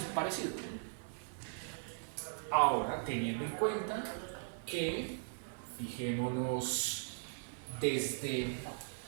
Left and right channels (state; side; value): silent; left; digital silence